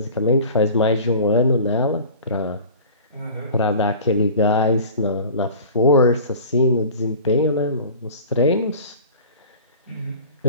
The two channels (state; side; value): inverted; both; correlation -0.41